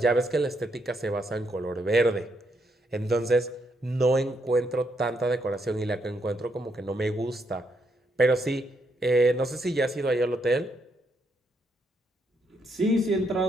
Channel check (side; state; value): both; normal; correlation 0.76